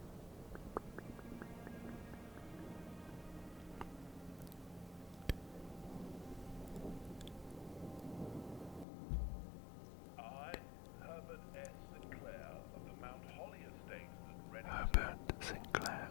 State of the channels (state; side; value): drops out; right; at 8.8 s